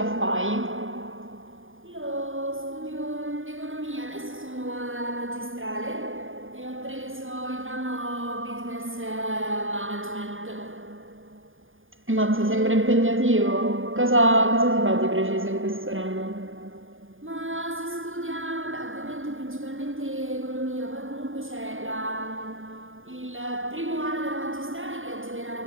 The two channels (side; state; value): left; late; 0.59 ms